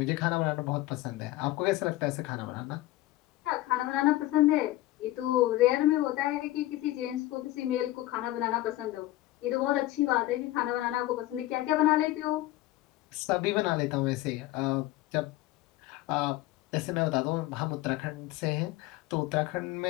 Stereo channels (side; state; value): right; quieter; 16.6 dB